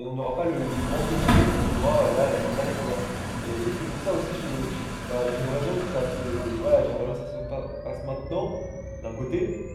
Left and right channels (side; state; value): both; identical; correlation 1.00